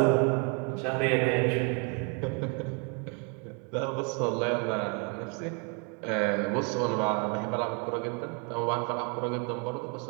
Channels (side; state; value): left; quieter; 35.9 dB